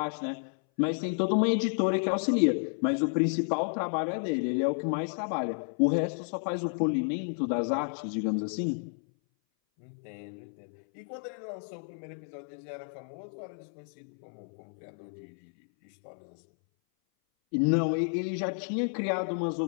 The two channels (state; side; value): silent; right; 57 dB below the other